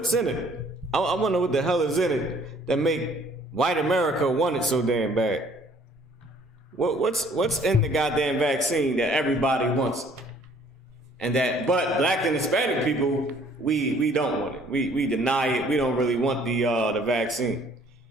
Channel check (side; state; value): both; normal; correlation 0.59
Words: in it? I wonder what the hell is in it that make white America want it so damn bad. What's in the goddamn vaccine that everybody wants? And that, but black and Hispanic people, we don't want it. We deny it. We don't really want the vaccine.